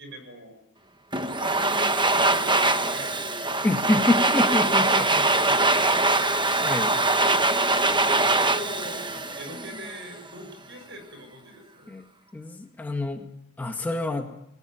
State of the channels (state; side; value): normal; both; correlation 0.08